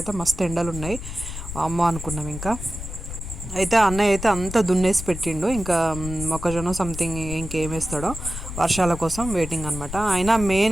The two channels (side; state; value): left; noise; rumble, 9 dB below the sound